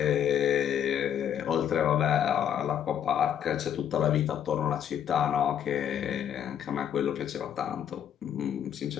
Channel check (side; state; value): right; quieter; 9.4 dB